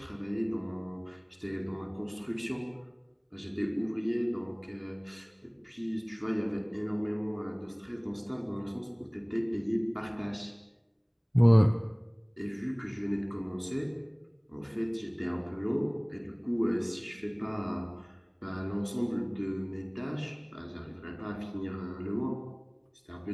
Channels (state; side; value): identical; both; correlation 1.00